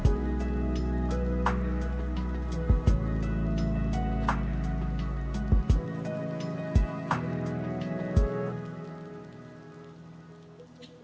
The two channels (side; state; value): both; identical; correlation 1.00